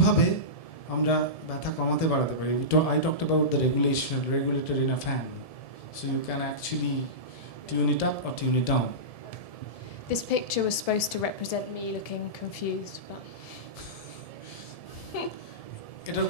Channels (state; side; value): late; right; 1.7 ms